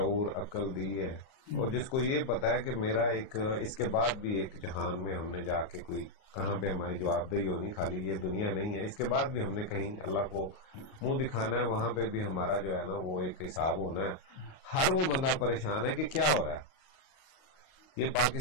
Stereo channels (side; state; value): right; late; 38 ms